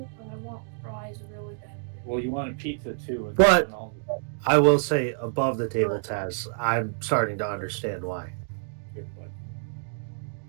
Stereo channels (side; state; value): left; silent; digital silence